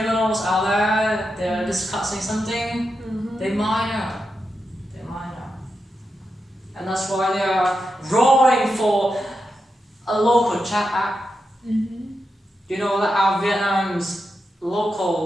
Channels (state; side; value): normal; both; correlation 0.87